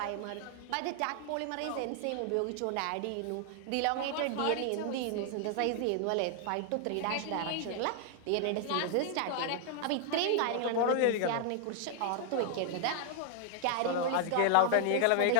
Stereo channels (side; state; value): both; different; correlation 0.00